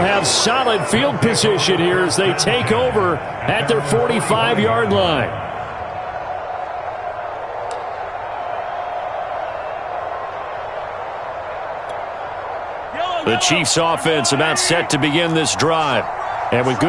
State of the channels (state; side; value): identical; both; correlation 1.00